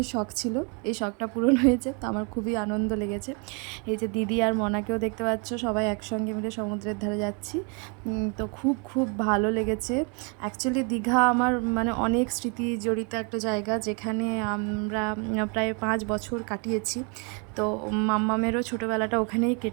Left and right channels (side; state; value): left; quieter; 34.9 dB